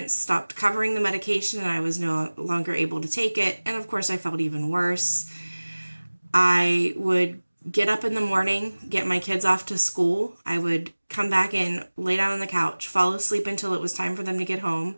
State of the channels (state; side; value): inverted; both; correlation -1.00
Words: stopped covering the medication and I was no longer able to take it. And of course, I felt even worse. I would get up in the morning, get my kids off to school. I would come back in, lay down on the couch, fall asleep until it was time for them to get